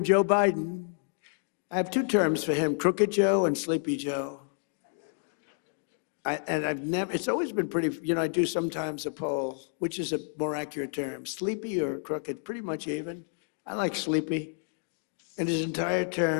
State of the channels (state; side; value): silent; right; 58 dB below the other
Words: Joe Biden, I have 2 terms for him, Crooked Joe and Sleepy Joe. It's always been pretty, you know, I do sometimes a poll, which is a more accurate term, sleepy or crooked, pretty much even. I like sleepy. In his entire